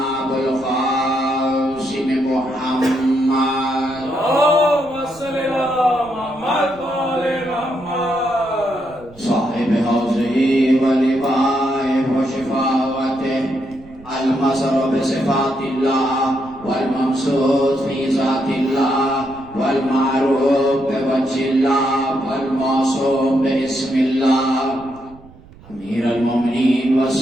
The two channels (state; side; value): noise; right; rumble, 22 dB below the sound